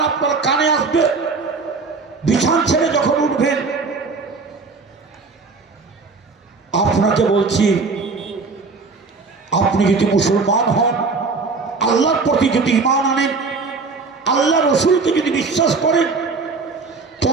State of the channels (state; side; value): quieter; left; 4.3 dB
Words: আপনার কানে আসবে, বিছান ছেড়ে যখন উঠবেন, আপনাকে বলছি আপনি যদি মুসলমান হন, আল্লাহর প্রতি যদি ঈমান আনেন, আল্লাহ রসুলকে যদি বিশ্বাস করেন,